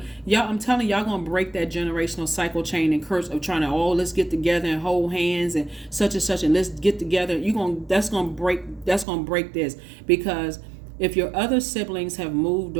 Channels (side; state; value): left; drops out; at 9.1 s